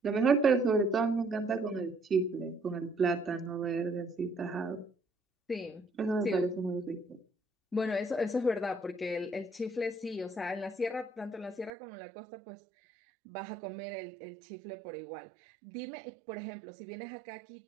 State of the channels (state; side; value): drops out; left; at 11.7 s